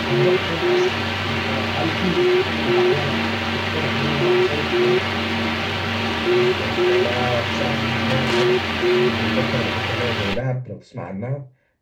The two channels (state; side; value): identical; both; correlation 1.00